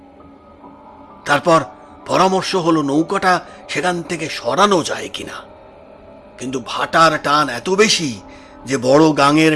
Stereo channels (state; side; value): identical; both; correlation 1.00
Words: তারপর পরামর্শ হলো নৌকাটা সেখান থেকে সরানো যায় কিনা। কিন্তু ভাটার টান এত বেশি যে বড় গাঙের